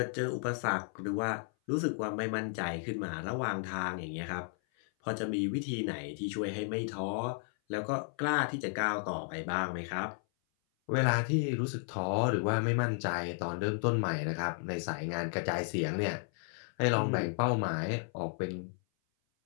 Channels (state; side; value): silent; right; 55 dB below the other